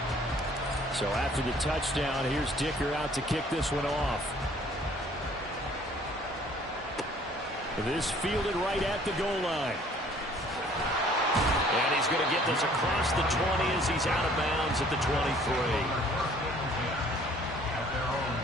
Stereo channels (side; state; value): both; normal; correlation 0.56